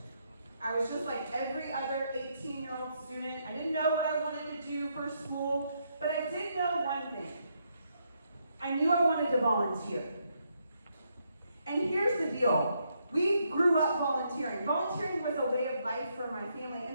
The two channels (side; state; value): both; inverted; correlation -0.77